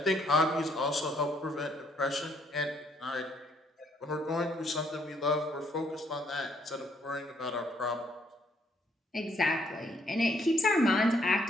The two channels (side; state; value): both; normal; correlation 0.69